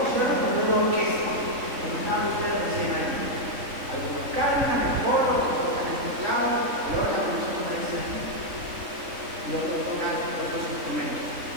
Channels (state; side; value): late; left; 3.6 ms